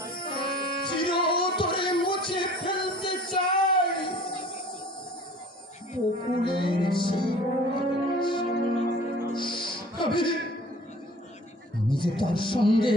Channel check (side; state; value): both; normal; correlation 0.47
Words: চিরতরে মুছে ফেলতে চাই বকুলের সেই। আমি যে তার সঙ্গে